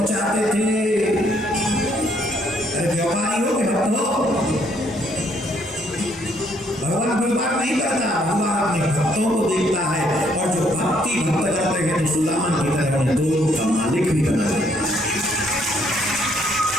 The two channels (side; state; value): both; normal; correlation 0.68